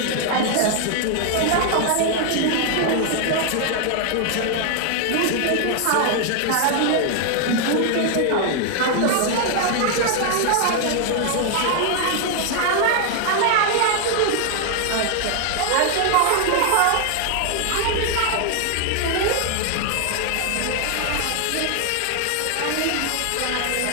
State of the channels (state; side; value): different; both; correlation 0.00